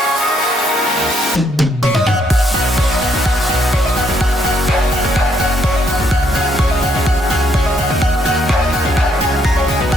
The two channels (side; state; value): both; normal; correlation 0.72